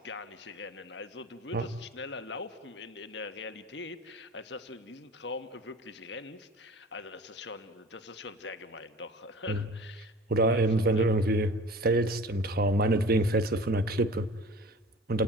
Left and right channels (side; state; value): both; normal; correlation 0.41